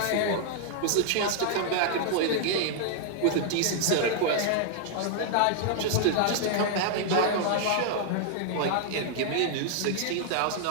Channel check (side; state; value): both; different; correlation -0.01